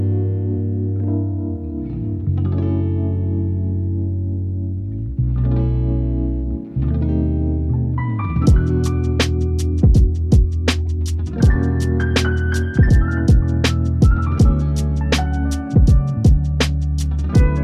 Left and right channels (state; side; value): identical; both; correlation 1.00